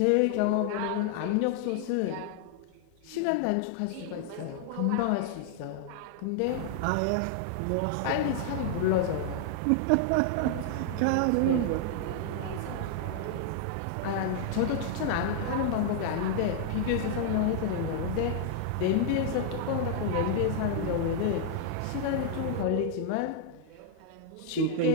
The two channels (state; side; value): different; both; correlation 0.00